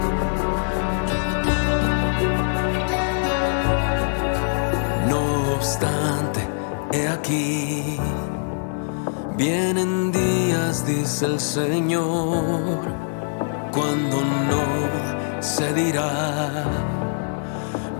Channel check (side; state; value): right; silent; 63 dB below the other